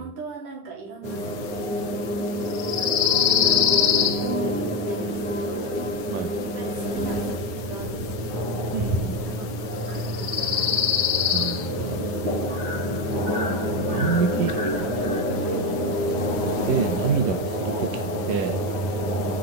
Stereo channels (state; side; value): late; left; 9.6 ms